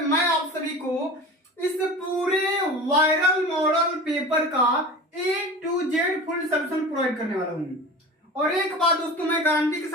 मैं आप सभी को इस पूरे वायरल मॉडल पेपर का A to Z full solution provide करने वाला हूँ। और एक बात दोस्तों, मैं गारंटी के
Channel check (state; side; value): normal; both; correlation 0.34